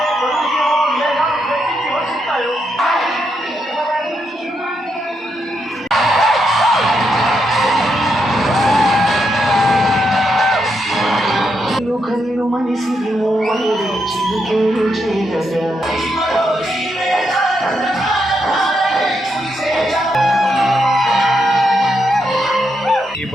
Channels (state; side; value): normal; both; correlation 0.81